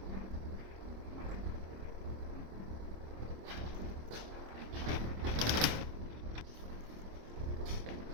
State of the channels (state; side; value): late; left; 26 ms